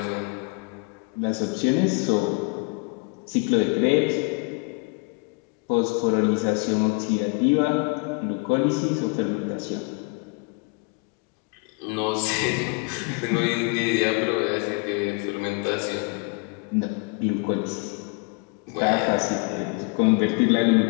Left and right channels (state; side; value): quieter; right; 32.1 dB